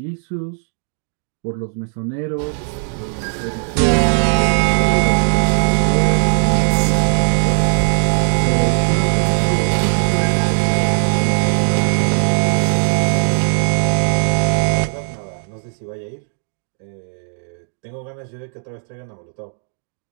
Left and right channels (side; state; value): left; silent; 68 dB below the other